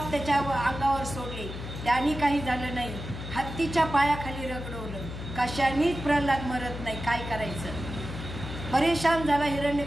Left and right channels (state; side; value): noise; left; hum, 8 dB below the sound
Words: त्याच्या अंगावर सोडले, त्याने काही झालं नाही. हत्तीच्या पायाखाली रगडवलं, कशानेच प्रल्हाद मरत नाही. काय करायचं. परेशान झाला